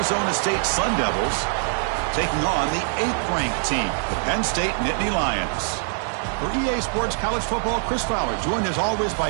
State Sun Devils taking on the 8th-ranked team, the Penn State Nittany Lions. For EA Sports College Football, Chris Fowler, joined as always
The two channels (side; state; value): left; silent; 58 dB below the other